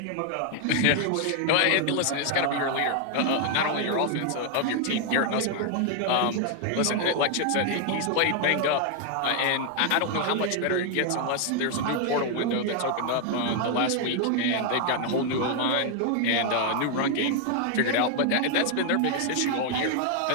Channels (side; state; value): both; different; correlation 0.00